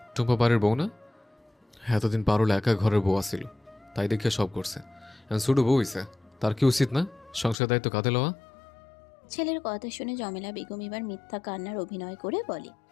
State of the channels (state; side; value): drops out; right; at 7.6 s